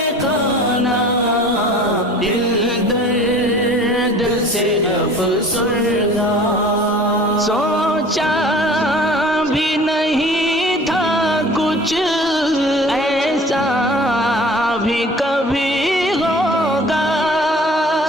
دل درد سے افسردہ سوچا بھی نہیں تھا کچھ ایسا بھی کبھی ہوگا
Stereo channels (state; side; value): normal; both; correlation 0.46